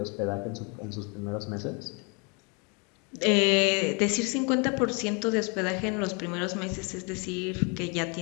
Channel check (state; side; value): quieter; right; 33.0 dB